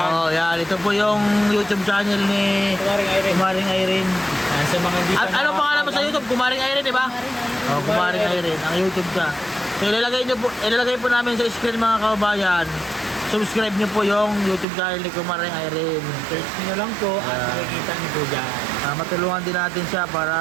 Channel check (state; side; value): drops out; left; at 14.7 s